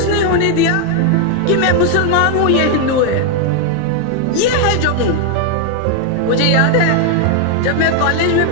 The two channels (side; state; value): both; different; correlation 0.00